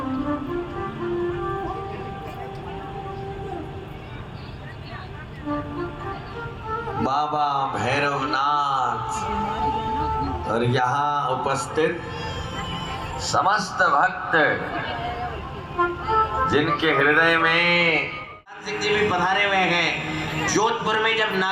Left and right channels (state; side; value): identical; both; correlation 1.00